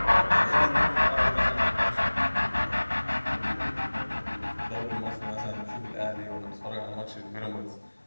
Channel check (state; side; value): inverted; both; correlation -1.00